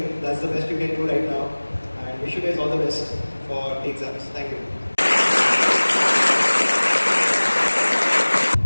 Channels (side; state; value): both; inverted; correlation -1.00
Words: That's the best you can do right now. And wish you guys all the best for the exams. Thank you.